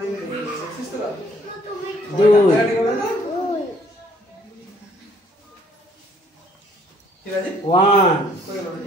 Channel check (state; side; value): normal; both; correlation 0.61